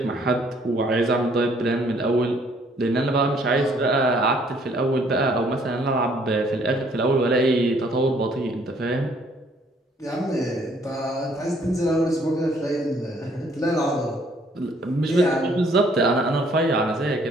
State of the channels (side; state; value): both; normal; correlation 0.63